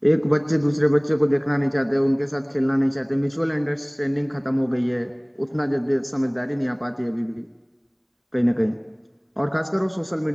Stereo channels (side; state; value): both; identical; correlation 1.00